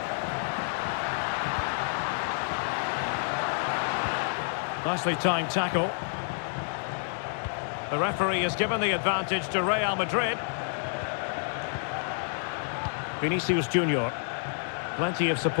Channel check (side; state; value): right; silent; digital silence